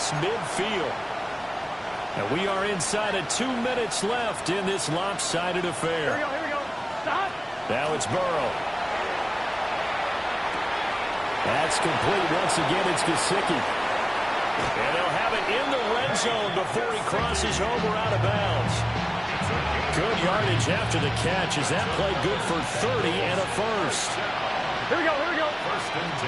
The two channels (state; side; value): identical; both; correlation 1.00